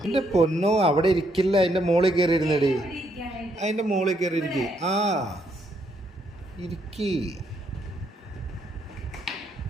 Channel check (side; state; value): both; normal; correlation 0.74